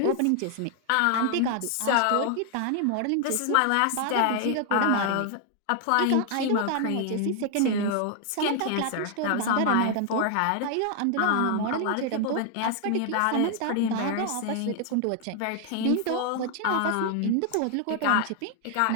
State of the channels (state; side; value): different; both; correlation 0.00